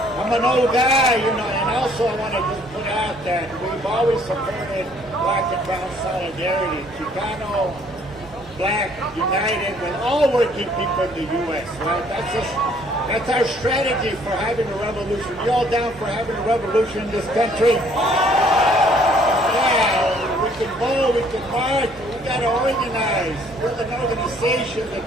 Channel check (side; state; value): both; normal; correlation 0.61